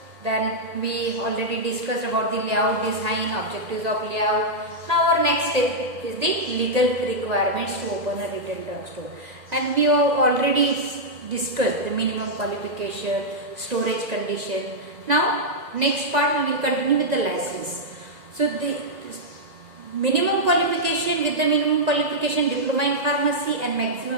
Then we already discussed about the layout design, objectives of layout. Now our next step is the legal requirements to open a retail drugstore, and we have already discussed the minimum qualification, storage condition. Now next part we will continue with the license. So the minimum qualification, with the minimum qualification diploma in pharmacy and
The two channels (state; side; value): late; left; 2.0 ms